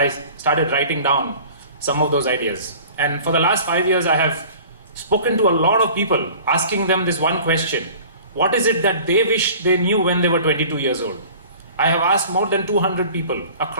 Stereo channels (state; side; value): inverted; both; correlation -0.45